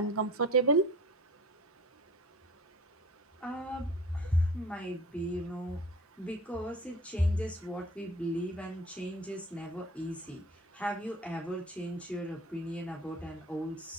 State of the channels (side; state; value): both; normal; correlation 0.42